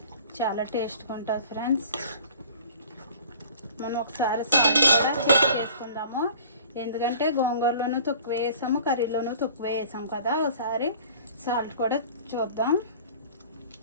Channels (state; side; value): inverted; both; correlation -0.47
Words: చాలా టేస్ట్గా ఉంటుంది ఫ్రెండ్స్. మనం ఒకసారి సాల్ట్ కూడా చెక్ చేసుకుందాము, ఎందుకంటే గోంగూరలోనూ తక్కువ వేసాము, కర్రీలోనూ తక్కువ వేసాం కదా. ఒకసారి సాల్ట్ కూడా చూద్దాం.